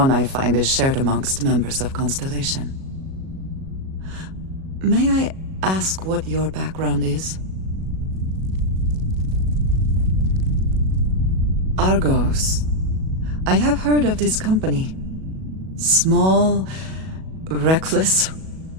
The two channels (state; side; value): late; left; 37 ms